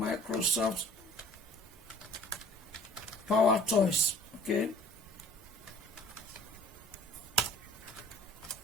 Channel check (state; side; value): normal; both; correlation 0.51